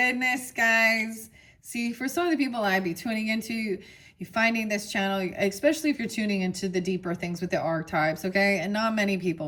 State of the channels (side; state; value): both; identical; correlation 1.00